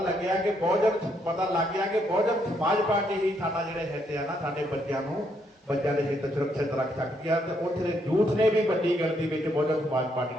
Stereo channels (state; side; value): normal; both; correlation 0.74